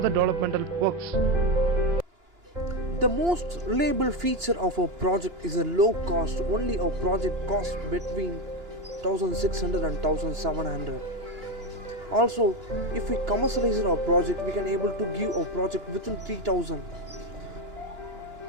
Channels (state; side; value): late; left; 2.9 ms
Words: developmental works. The most reliable feature of our project is a low cost. Only our project costs between 1600 and 1700. Also, if we commercialize our project, we can able to give our project within 3000.